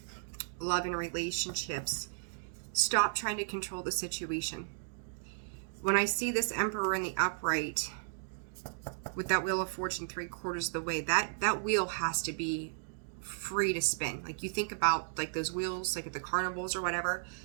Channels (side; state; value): left; silent; digital silence